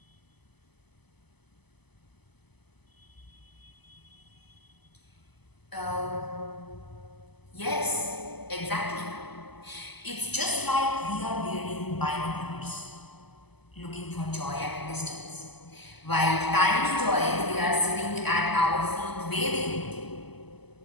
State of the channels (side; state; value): right; late; 0.99 ms